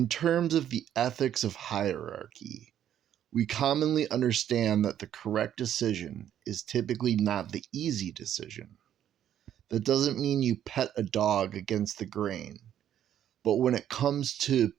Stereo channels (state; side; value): quieter; left; 10.5 dB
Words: terms of the ethics of hierarchy, we commonly understand that the correct decision is typically not the easy decision. That doesn't mean you pet a dog against the grain, but when it comes to